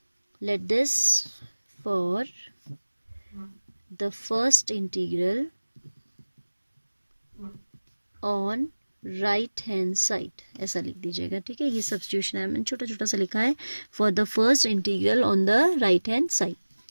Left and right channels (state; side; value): inverted; both; correlation -1.00